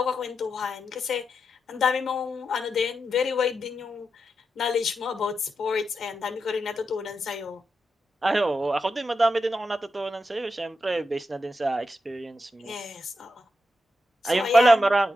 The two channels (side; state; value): both; normal; correlation 0.87